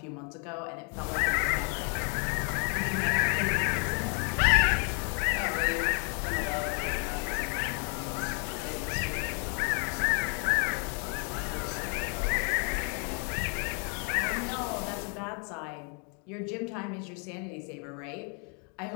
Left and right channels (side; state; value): right; quieter; 39.2 dB